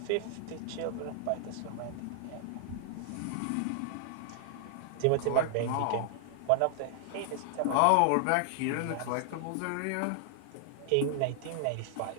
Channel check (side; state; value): both; different; correlation 0.00